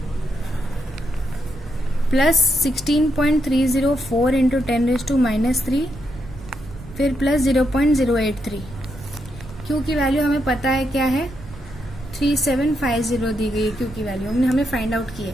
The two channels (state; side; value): noise; right; rumble, 16 dB below the sound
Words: plus 16.304 into 10⁻³ फिर प्लस 0.083। Q की वैल्यू हमें पता है क्या है 3750 दी गई है। Q की वैल्यू हमें फाइंड आउट की है।